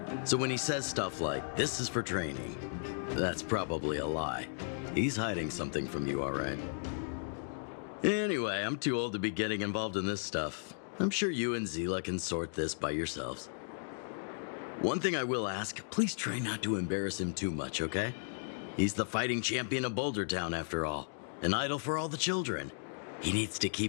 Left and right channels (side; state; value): right; silent; digital silence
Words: So when he says stuff like, "This is for training," that's probably a lie. He's hiding something from you, all right? Anyway, I'm too old to be getting involved in this stuff. I'm sure you and Zila can sort this by yourselves. One thing I will ask, please try not to embarrass him too much, okay? He's the fighting champion of Boulder Town, after all. An idol for all the children. He needs to